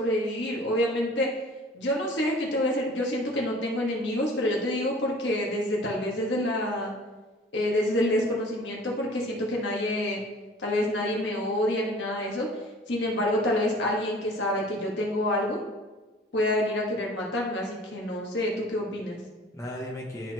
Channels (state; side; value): normal; both; correlation 0.47